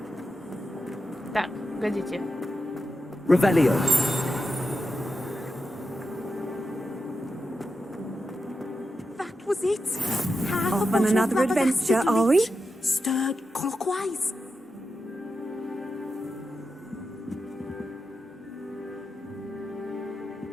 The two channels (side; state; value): both; normal; correlation 0.88